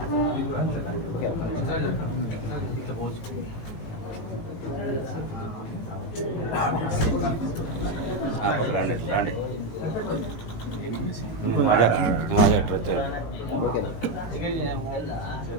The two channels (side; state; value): right; late; 18 ms